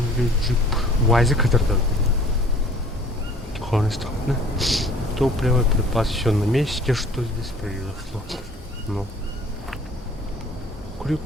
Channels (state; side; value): normal; both; correlation 0.52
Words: джип УАЗик, который странно. Топливо, припас, все на месте. Что здесь произошло? Ну.